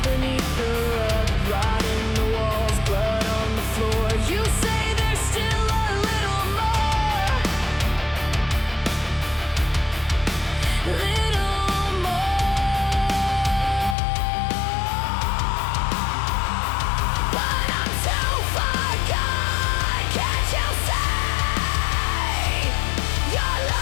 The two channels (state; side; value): drops out; right; at 14.0 s